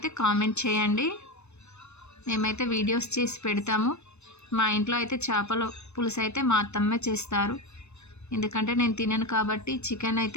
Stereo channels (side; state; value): right; late; 0.81 ms